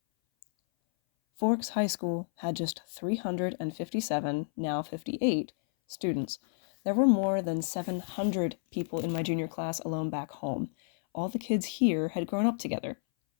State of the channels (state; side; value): silent; right; 57 dB below the other